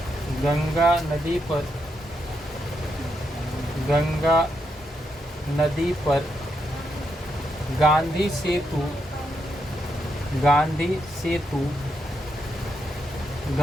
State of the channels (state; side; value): normal; both; correlation 0.81